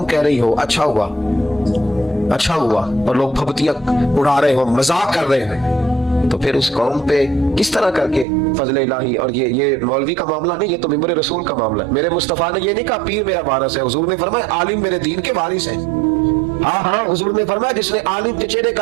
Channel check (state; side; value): drops out; left; at 8.2 s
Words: कह रही हो अच्छा हुआ अच्छा हुआ, और लोग फबतियां उड़ा रहे हो, मजाक कर रहे हैं, तो फिर उस कौम पे किस तरह करके फजल इलाही। और ये मौलवी का मामला नहीं, ये तो मिंबर रसूल का मामला है। मेरे मुस्तफा ने ये नहीं कहा पीर मेरा वारिस है, हुजूर ने फरमाया आलिम मेरे दीन के वारिस है। हाँ हाँ, हुजूर ने फरमाया जिसने आलिम के चेहरे